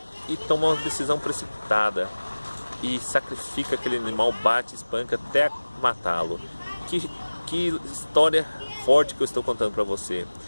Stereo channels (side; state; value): both; inverted; correlation -1.00